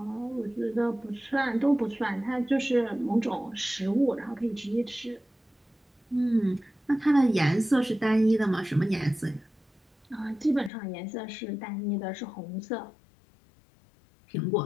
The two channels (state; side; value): drops out; right; at 10.7 s